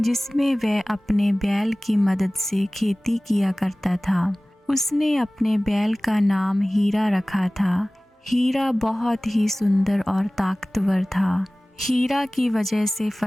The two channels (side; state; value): both; normal; correlation 0.98